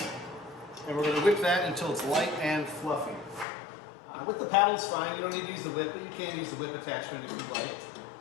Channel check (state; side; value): drops out; right; at 3.5 s